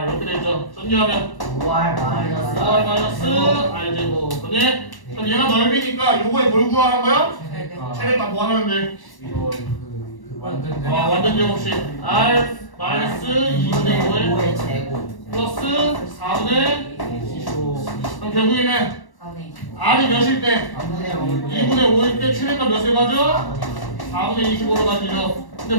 이렇게 되죠. 전개하면 5R 5R 마이너스 R 제곱. 그니? 그럼 얘가 넓이니까 요거에 뭘 구하는 거야? 최대값 뭐 하면 돼? 이거 그 완전 완전 제곱식 R 마이너스 2분의 5에 5의 제곱 플러스 4분의 25. 그럼 결국에는 4분의 25 R이 몇일 때? 3분의 5 2분의 5일 때 최대값 몇을 가져? 4분의 25로 가지죠.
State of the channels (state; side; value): late; right; 1.1 ms